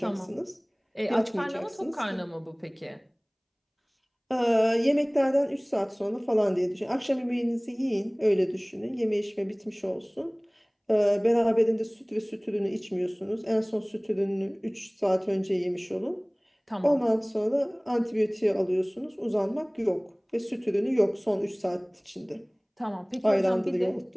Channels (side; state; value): both; identical; correlation 1.00